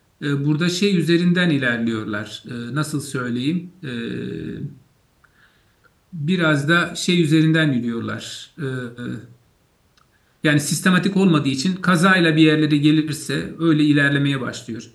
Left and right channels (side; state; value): both; identical; correlation 1.00